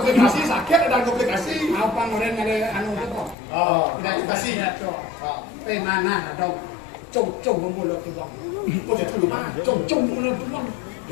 sakit ada komplikasi. Apa ngeren ada anu tu kok. Oh, Komplikasi ya tuh. Mana ada cung mulut tu bang. kau jadi dulu mah. Cung mulut tu bang.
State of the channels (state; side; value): drops out; right; at 3.4 s